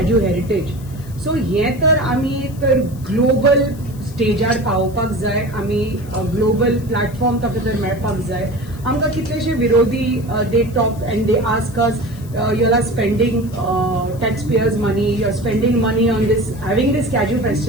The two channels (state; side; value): noise; left; hiss, 23 dB below the sound